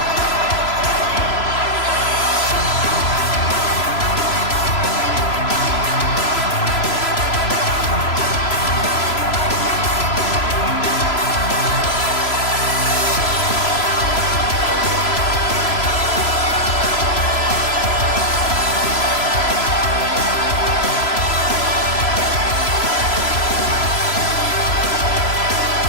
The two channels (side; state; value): right; late; 3.0 ms